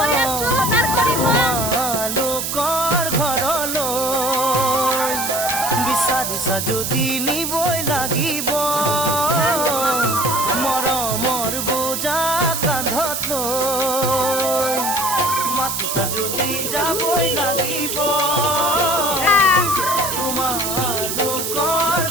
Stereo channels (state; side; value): noise; right; hiss, 2 dB below the sound